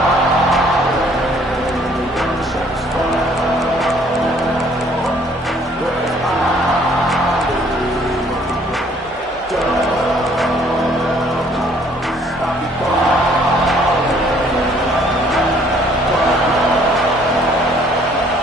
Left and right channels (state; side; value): normal; both; correlation 0.60